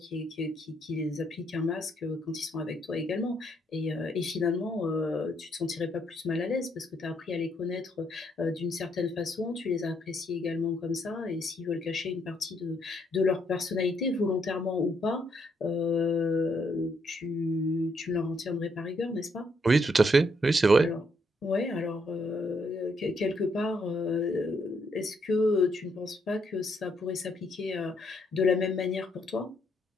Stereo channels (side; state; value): both; normal; correlation 0.74